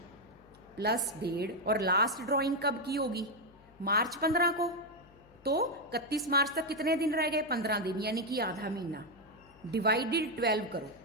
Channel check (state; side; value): noise; left; hum, 27 dB below the sound